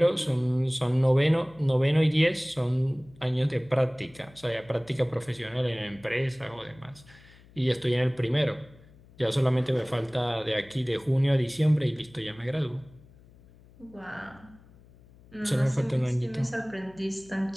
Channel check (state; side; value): noise; left; hum, 25 dB below the sound